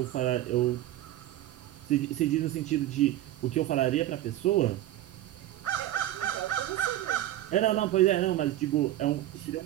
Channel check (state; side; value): quieter; left; 13.9 dB